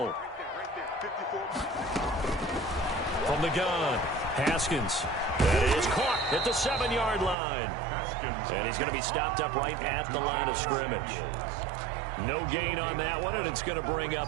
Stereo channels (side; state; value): left; drops out; at 7.4 s